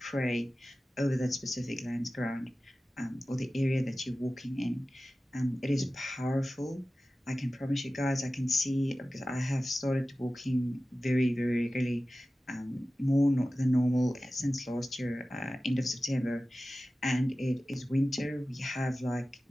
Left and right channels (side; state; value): both; normal; correlation 0.95